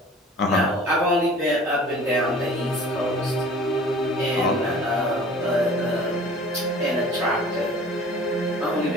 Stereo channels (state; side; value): normal; both; correlation 0.46